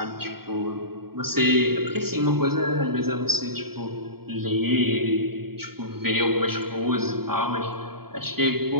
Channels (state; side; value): late; left; 0.95 ms